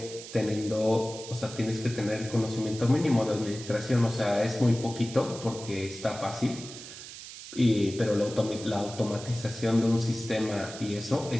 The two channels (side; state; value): right; noise; hiss, 13 dB below the sound